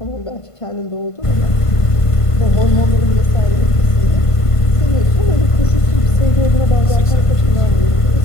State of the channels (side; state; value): right; late; 1.5 ms